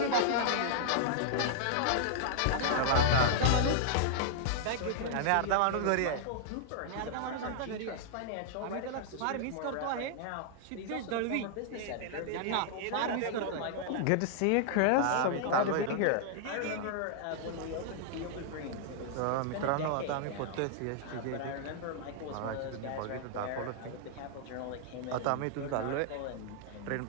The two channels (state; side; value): different; both; correlation -0.01